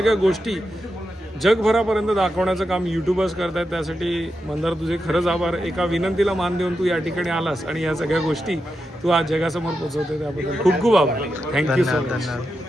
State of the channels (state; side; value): normal; both; correlation 0.87